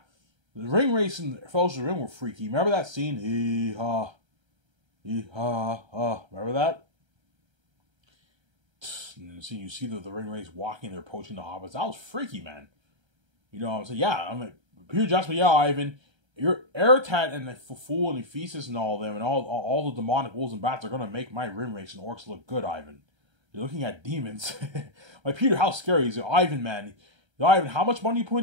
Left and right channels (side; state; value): left; late; 1.3 ms